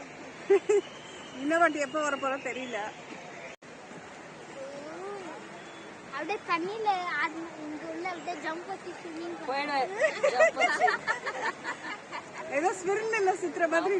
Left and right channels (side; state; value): both; identical; correlation 1.00